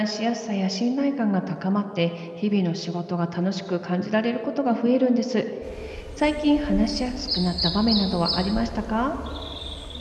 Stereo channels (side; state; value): both; identical; correlation 1.00